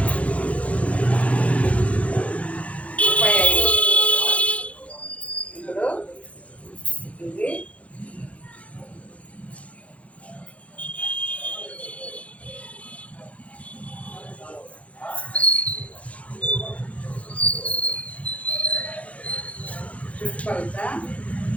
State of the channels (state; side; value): late; right; 0.064 ms